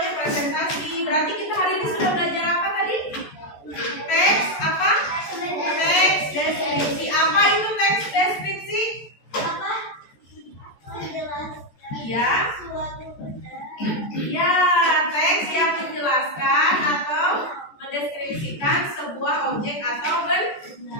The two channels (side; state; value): right; late; 14 ms